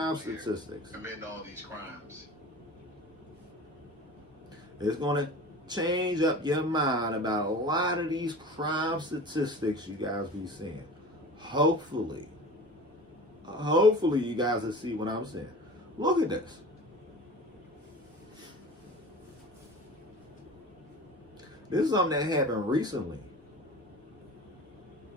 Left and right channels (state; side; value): normal; both; correlation 0.37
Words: statistics. Commit all these crimes. It's going to change up your mind about a lot of these crime statistics you guys be seeing. Hopefully, Hopefully you guys will see what I'm saying. Look at this. This is something that happened recently.